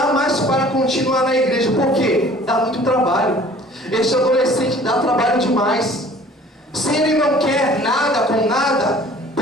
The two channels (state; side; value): normal; both; correlation 0.50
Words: mais para continuar na igreja. Por quê? Dá muito trabalho. Este adolescente dá trabalho demais. Se ele não quer nada com nada,